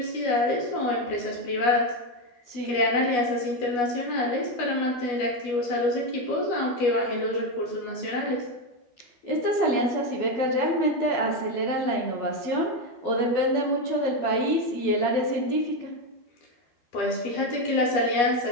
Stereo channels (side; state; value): right; late; 12 ms